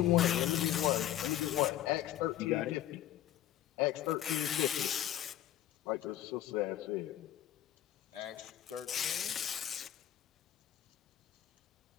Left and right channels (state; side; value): quieter; right; 12.5 dB